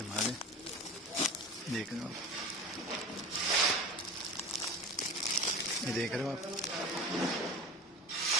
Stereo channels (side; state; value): both; normal; correlation 0.33